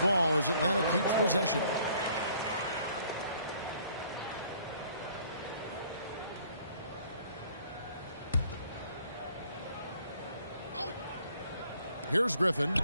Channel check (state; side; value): inverted; both; correlation -0.60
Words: as Atlanta keeps possession. Here's Griffin.